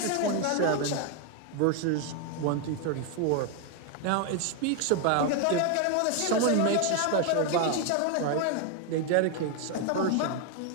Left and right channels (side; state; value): both; different; correlation 0.01